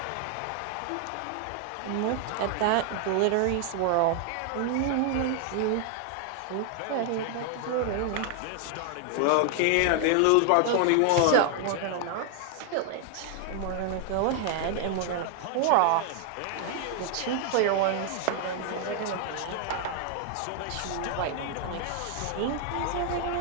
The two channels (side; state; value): both; different; correlation 0.00